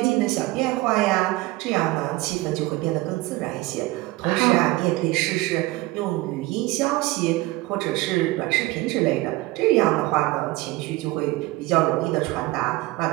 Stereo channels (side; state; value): left; quieter; 19.8 dB